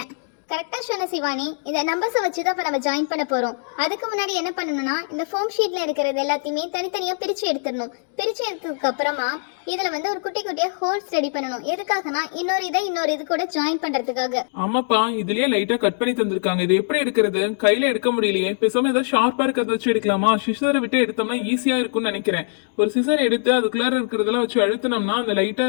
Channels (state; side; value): silent; right; digital silence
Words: கரெக்டா சொன்ன சிவானி. இந்த நம்பர்ஸை வச்சு தான் இப்போ நம்ம ஜாயின் பண்ண போறோம். அதுக்கு முன்னாடி என்ன பண்ணணும்னா, இந்த ஃபோம் ஷீட்ல இருக்கிறது எல்லாத்தையுமே தனித்தனியா பிரிச்சு எடுத்துடணும். பிரிச்சு எடுத்ததுக்கு அப்புறமா இதுல வந்து ஒரு குட்டி குட்டியா ஹோல்ஸ் ரெடி பண்ணணும். எதுக்காகனா இன்னொரு இது கூட ஜாயின் பண்றதுக்காக. ஆமாப்பா, இதுலயே லைட்டா கட் பண்ணி தந்திருக்காங்க. இது எப்படி எடுக்கிறது? கையில எடுக்க முடியலையே. பேசாம ஏதாவது ஷார்ப்பா இருக்கிறத வச்சு எடுக்கலாமா? சிசரை விட்டு எடுத்தோம்னா ஈஸியா இருக்கும்னு நினைக்கிறேன். ஒரு சிசர் எடுத்து அதுக்குள்ளார இருக்கிறதெல்லாம் வச்சு அழுத்தினோம்னா அந்த லைட்டா